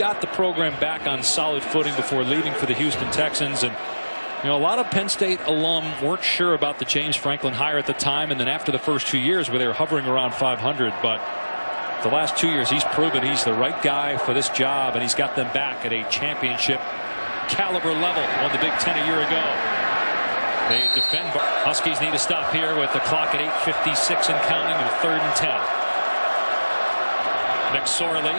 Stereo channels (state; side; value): inverted; both; correlation -1.00